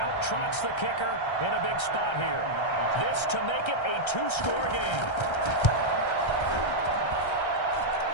trots the kicker in a big spot here. This to make it a 2-score game.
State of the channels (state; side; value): late; right; 1.3 ms